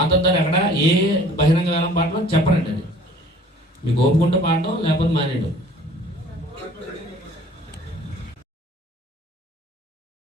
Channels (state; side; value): normal; both; correlation 0.51